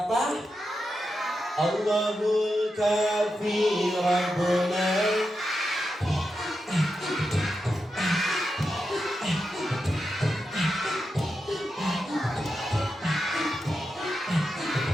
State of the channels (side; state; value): both; normal; correlation 0.88